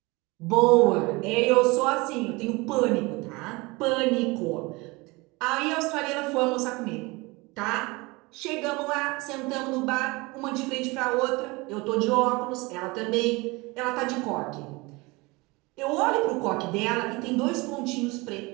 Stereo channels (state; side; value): quieter; left; 24.4 dB